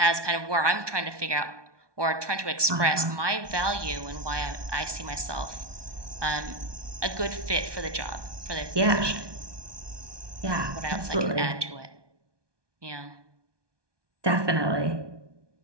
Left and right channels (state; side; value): late; left; 1.2 ms